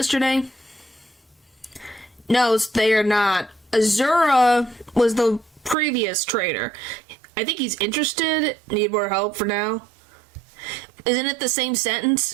No, they are not. Azura was the previous trader. I think he's interested. Need more help for now. Isn't it the same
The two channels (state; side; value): drops out; left; at 5.8 s